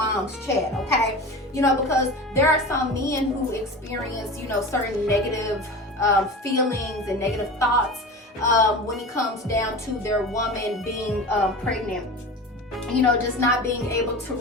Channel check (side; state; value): both; normal; correlation 0.31